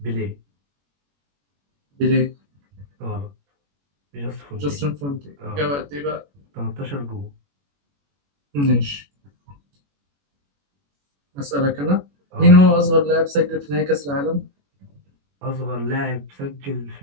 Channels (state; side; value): late; left; 21 ms